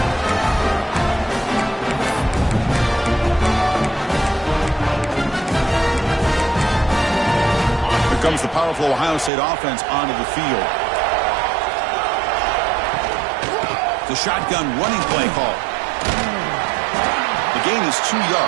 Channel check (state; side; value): drops out; left; at 9.3 s